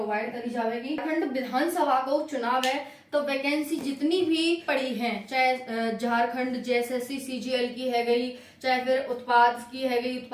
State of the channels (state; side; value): identical; both; correlation 1.00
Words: करी जाएगी। झारखंड विधानसभा को चुनाव है तो वैकेंसी जितनी भी पड़ी है, चाहे झारखंड जेएसएससी सीजीएल की है गई, चाहे फिर उत्पाद की है गई,